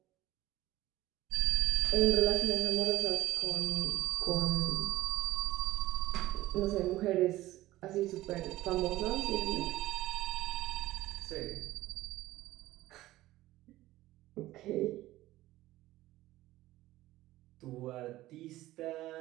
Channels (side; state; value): left; quieter; 16.4 dB